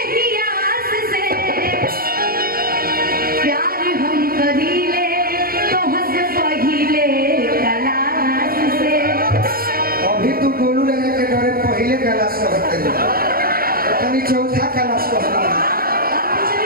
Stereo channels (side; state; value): left; late; 0.43 ms